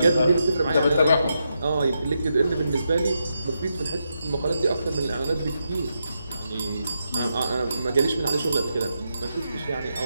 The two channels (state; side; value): inverted; both; correlation -0.84